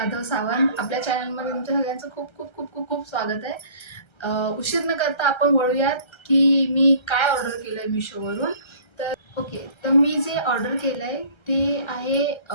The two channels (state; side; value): late; right; 1.3 ms